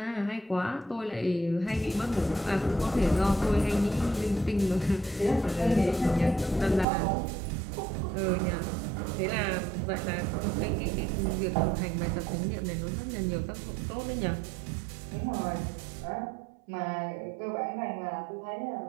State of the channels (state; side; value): drops out; left; at 6.9 s